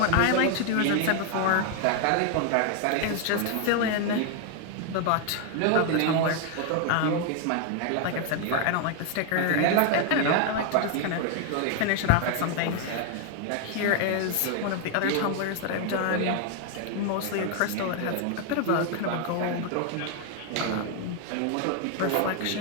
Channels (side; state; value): both; different; correlation 0.00